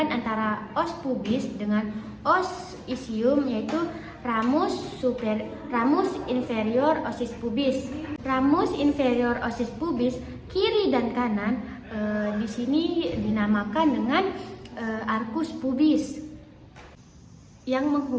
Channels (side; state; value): both; identical; correlation 1.00